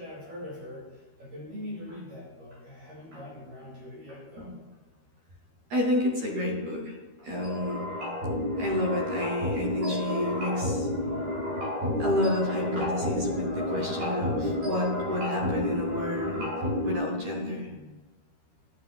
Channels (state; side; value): late; left; 13 ms